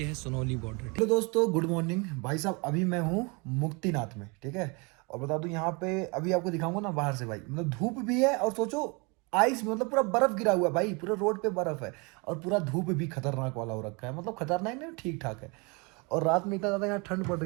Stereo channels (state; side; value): quieter; left; 29.8 dB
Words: है सोनौली बॉर्डर। हेलो दोस्तों, गुड मॉर्निंग भाई साहब। अभी मैं हूँ मुक्तिनाथ में, ठीक है। और बता दूं यहाँ पे अभी आपको दिखाऊंगा ना बाहर से भाई, मतलब धूप भी है और सोचो आइस, मतलब पूरा बर्फ गिरा हुआ है भाई, पूरा रोड पे बर्फ है। और पूरा धूप भी खतरनाक वाला हो रखा है, मतलब खतरनाक नहीं, ठीक ठाक है। और रात में इतना ज़्यादा यहाँ ठंड पड़